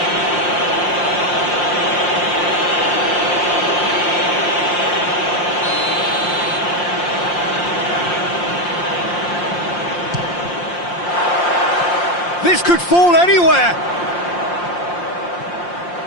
This could fall anywhere.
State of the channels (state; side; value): late; right; 5.7 ms